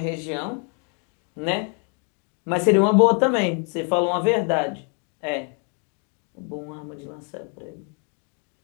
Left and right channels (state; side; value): quieter; right; 39.0 dB